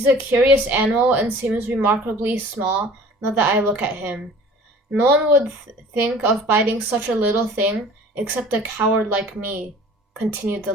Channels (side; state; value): both; normal; correlation 0.46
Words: a curious animal and seems remarkably small now that I look at him. No one would think of biting such a little thing except a coward like me," continued the